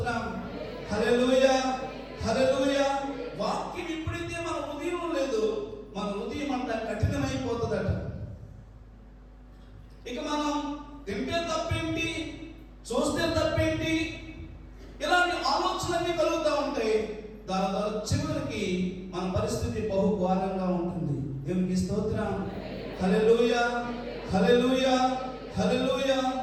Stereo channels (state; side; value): identical; both; correlation 1.00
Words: హల్లెలూయా, హల్లెలూయా. వాక్యం ఎప్పుడైతే మన హృదయం లేదు, మన హృదయం అంతా కఠినమైపోతుందట. ఇక మనం తింటే తప్పేంటి, చూస్తే తప్పేంటి, ఇలాంటి ఆలోచనలన్నీ కలుగుతూ ఉంటాయి. దాని ద్వారా చివరికి మన పరిస్థితి బహు ఘోరంగా ఉంటుంది. దేవునికి స్తోత్రం. హల్లెలూయా, హల్లెలూయా, హల్లెలూయా.